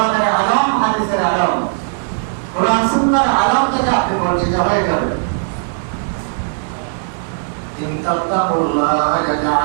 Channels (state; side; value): silent; left; digital silence